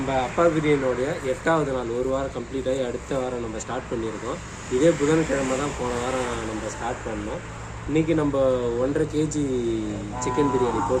அப்பா பிரியாணியோடைய 8வது நாள், ஒரு வாரம் கம்ப்ளீட் ஆகி அடுத்த வாரம் நம்ம ஸ்டார்ட் பண்ணியிருக்கோம். இதே புதன்கிழமை தான் போன வாரம் நம்ம ஸ்டார்ட் பண்ணோம். இன்றைக்கி நம்ம 1.5 kg சிக்கன் பிரியாணி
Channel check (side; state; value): both; identical; correlation 1.00